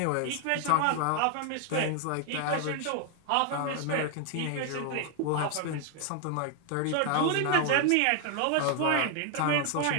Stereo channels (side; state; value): both; different; correlation 0.00